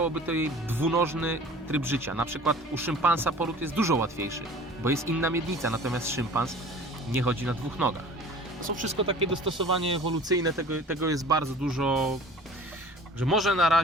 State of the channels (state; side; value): normal; both; correlation 0.45